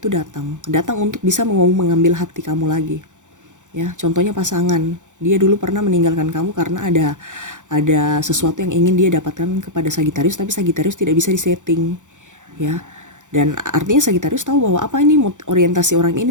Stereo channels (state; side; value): late; left; 0.86 ms